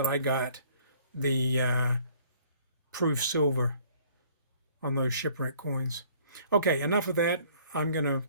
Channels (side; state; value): both; inverted; correlation -0.57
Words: I got the proof silver on those Shipwreck coins. Okay, enough of that. I'm going to